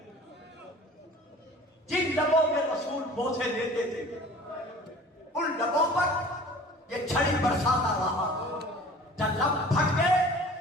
جن لبوں میں رسول بوسے دیتے تھے ان لبوں پر یہ چھڑی برساتا رہا. جب لب پھٹ گئے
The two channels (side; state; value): both; normal; correlation 0.45